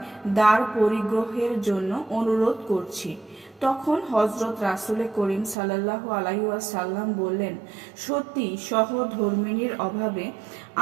দ্বার পরিগ্রহের জন্য অনুরোধ করছি। তখন হজরত রাসূল করিম সাল্লাল্লাহু আলাইহি ওয়াসাল্লাম বললেন, সত্যি সহধর্মিণীর অভাবে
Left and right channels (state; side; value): drops out; left; at 5.6 s